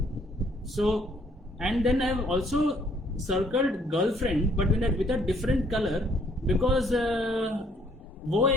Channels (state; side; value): normal; both; correlation 0.64